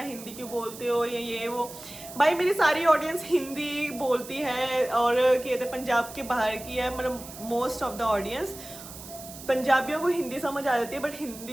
हिंदी क्यों बोलते हो, या ये वो। भाई मेरी सारी ऑडियंस हिंदी बोलती है, और कहते पंजाब के बाहर की है, मतलब मोस्ट ऑफ द ऑडियंस। पंजाबियों को हिंदी समझ आ जाती है, बट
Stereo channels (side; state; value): right; noise; hiss, 14 dB below the sound